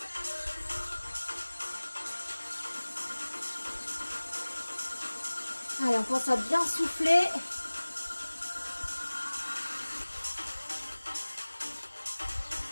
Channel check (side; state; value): both; inverted; correlation -1.00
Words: Allez, on pense à bien souffler.